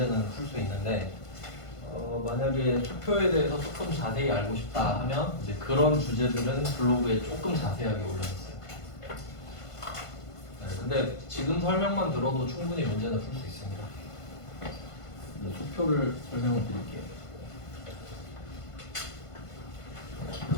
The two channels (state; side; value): late; right; 1.5 ms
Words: 풀 수 있는데 만약에 수표에 대해서 조금 자세히 알고 싶다 하면 이제 그런 주제들은 블로그에 조금 자세하게 올려놨어요. 네, 근데 지금 설명만 들어도 충분히 문제는 풀 수 있습니다. 수표를 설명을 드릴게요.